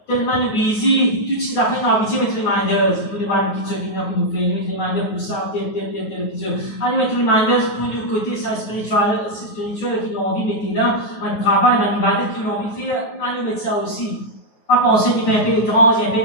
Tellement nous busy, toutes ces affaires nous habituent à mettre reminders pour nous voir une petite chose qui nous fait, nous mettre reminders pour ça, tel petite chose. On nous met reminders pour nous côté ça spirituel qui nous ont envie de mettre là, un travail, un ibadat qui nous ont envie de faire, on nous met ça aussi. Pas penser qu'il y a un peu étrange, il y a un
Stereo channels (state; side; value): late; right; 9.4 ms